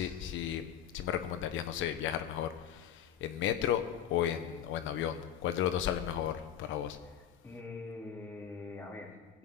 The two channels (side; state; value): right; quieter; 9.5 dB